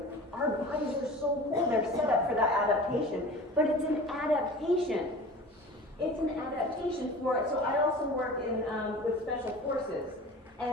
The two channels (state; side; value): normal; both; correlation 0.39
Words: Our bodies are so cool, they're set up for that adaptation. But it's an adaptation. It's an adaptation for it. So I also work with special forces.